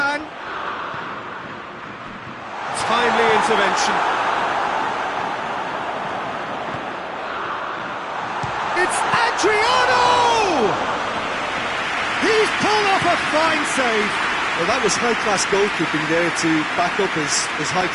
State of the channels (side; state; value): both; identical; correlation 1.00